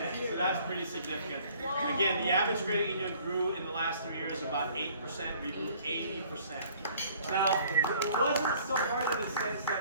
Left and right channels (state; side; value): inverted; both; correlation -0.56